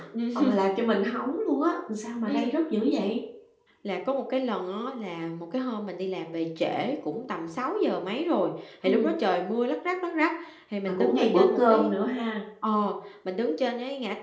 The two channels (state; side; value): identical; both; correlation 1.00